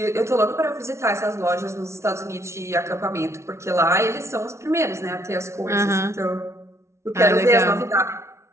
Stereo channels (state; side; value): late; left; 0.13 ms